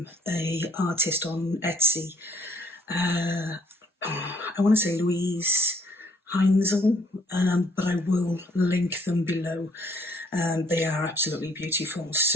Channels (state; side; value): normal; both; correlation 0.65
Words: a artist on Etsy. I want to say luiseHEINZL, but I will link them below. They are absolutely beautiful,